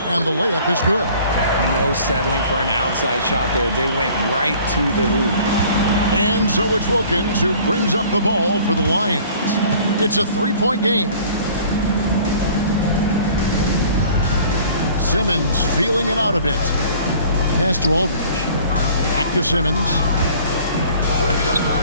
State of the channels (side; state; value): both; inverted; correlation -0.51